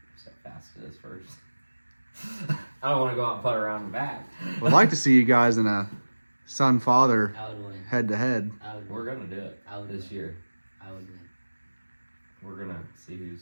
See how fast it is first. I don't want to go out and putt around the back. Would like to see you guys in a son-father I would win. head-to-head. I would We're win. gonna do it I would this win. year. I would win. We're gonna see who's.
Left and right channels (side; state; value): both; inverted; correlation -1.00